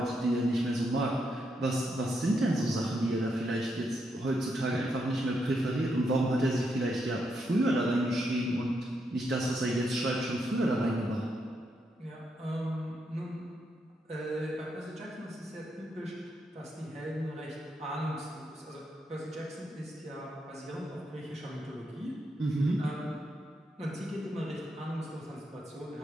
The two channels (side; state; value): both; normal; correlation 0.80